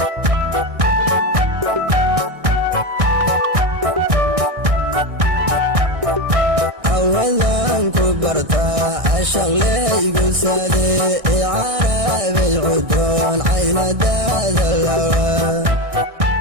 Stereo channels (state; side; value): late; left; 1.6 ms